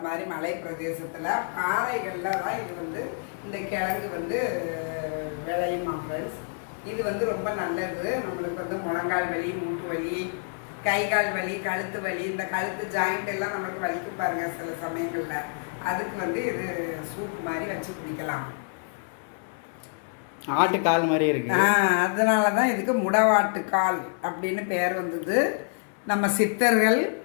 மாதிரி மலை பிரதேசத்தில் பாறைகளில் தான் இது வந்து இந்த கிழங்கு வந்து விளையுமா ஃப்ரெண்ட்ஸ். இது வந்து ரொம்ப நல்லது. நம்மளுக்கு வந்து முழங்கால் வலி, மூட்டு வலி, கை கால் வலி, கழுத்து வலி, இந்த கழுத்து ஜாயிண்ட் எல்லாம் நம்மளுக்கு வலிக்கு பாருங்க சில சமயங்களில். அதுக்கு வந்து இது சூப் மாதிரி வச்சு குடிக்கலாம். ஆட்டுக்கால் மாதிரி இருக்கு. அதனால தான் இதுக்கு முடவாட்டுக்கால் அப்படின்னு பேர் வந்தது. நம்ம சித்தர்கள்,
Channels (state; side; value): silent; right; 60 dB below the other